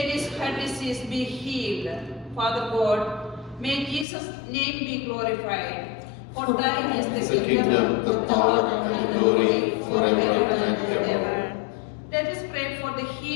heart disease be healed. Father God, may Jesus' name be glorified. For thine is the kingdom, the power, and the glory forever and ever. Let us pray for the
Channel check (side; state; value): right; drops out; at 4.0 s